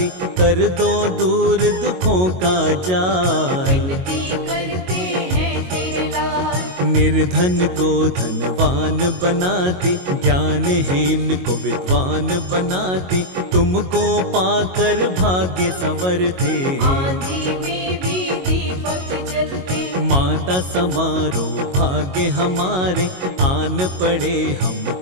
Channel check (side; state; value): left; late; 22 ms